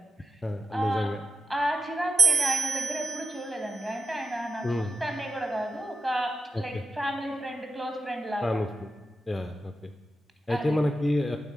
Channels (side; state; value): both; normal; correlation 0.90